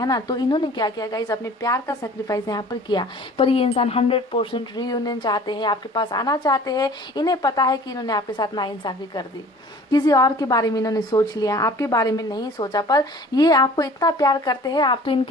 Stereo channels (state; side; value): normal; both; correlation 0.47